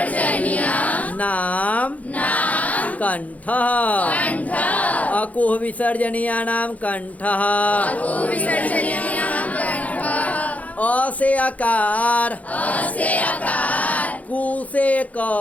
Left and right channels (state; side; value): late; right; 0.071 ms